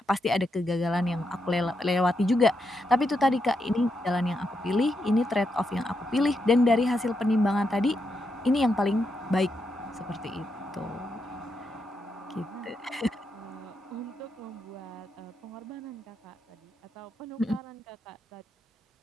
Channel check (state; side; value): normal; both; correlation 0.83